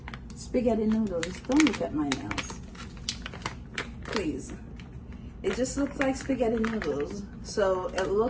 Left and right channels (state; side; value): identical; both; correlation 1.00